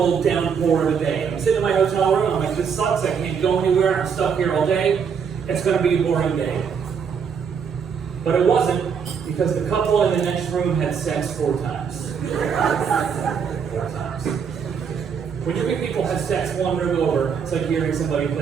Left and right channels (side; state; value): left; quieter; 6.7 dB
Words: downpour of a day. I'm sitting in my hotel room, I'm like, this sucks, I can't go anywhere, I'm stuck here all day. It's going to be a boring day. But it wasn't, because the couple in the next room had sex 4 times. 4 times. When you think people have sex one room over, it's like hearing somebody